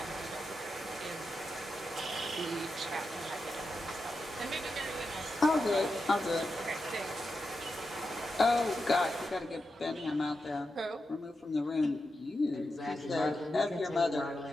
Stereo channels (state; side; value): normal; both; correlation 0.88